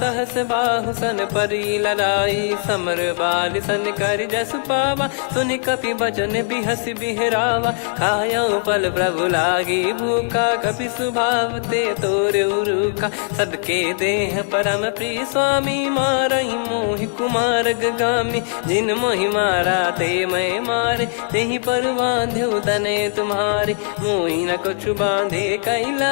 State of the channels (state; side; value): silent; right; digital silence